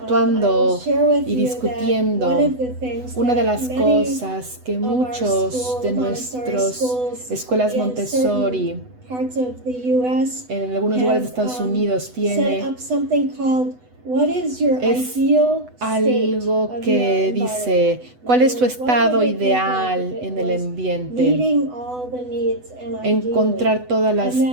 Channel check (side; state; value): left; late; 8.0 ms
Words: y discutiendo. Una de las cosas que muchos de nuestras escuelas Montessori en algunos lugares de Estados Unidos tiene es algo que dice ¿cuál es tu estado ideal en el ambiente? Encontrar todas las